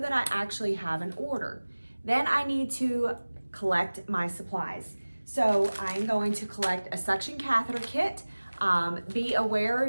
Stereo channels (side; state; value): both; inverted; correlation -1.00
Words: that I actually have an order. Then I need to collect my supplies. So I'm going to collect a suction catheter kit. Be